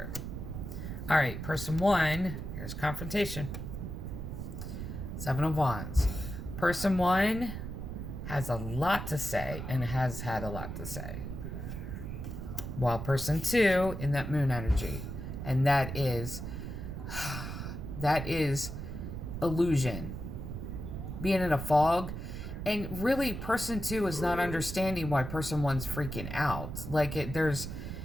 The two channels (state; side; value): noise; right; rumble, 6 dB below the sound